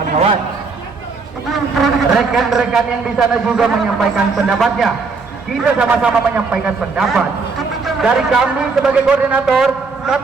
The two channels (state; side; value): quieter; left; 4.5 dB